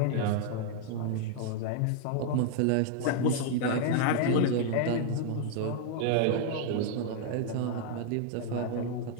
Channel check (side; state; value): both; different; correlation -0.01